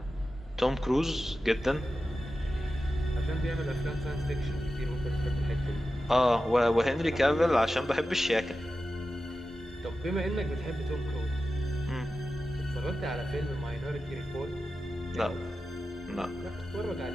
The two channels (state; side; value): normal; both; correlation 0.93